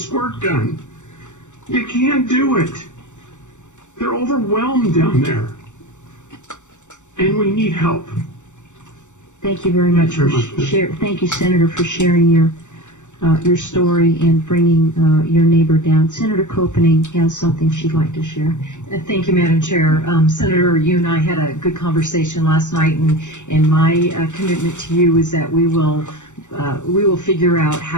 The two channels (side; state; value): right; late; 0.85 ms